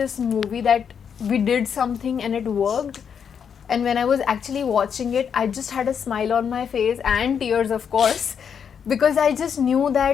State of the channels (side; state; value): right; quieter; 7.3 dB